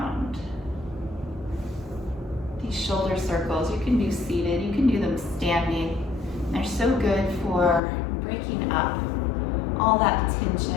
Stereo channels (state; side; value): drops out; right; at 7.8 s